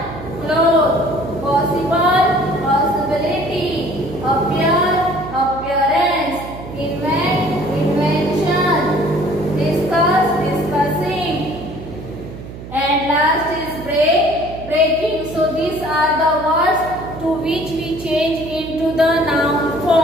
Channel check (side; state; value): right; noise; hum, 13 dB below the sound